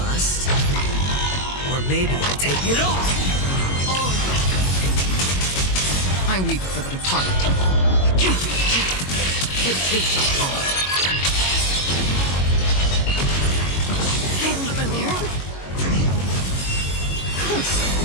Or maybe I'll take it all. I weep for the departed. It takes a fall. Familiar.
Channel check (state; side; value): late; right; 22 ms